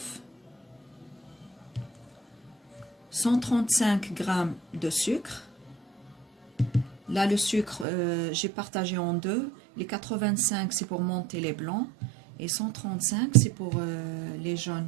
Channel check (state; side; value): drops out; left; at 7.9 s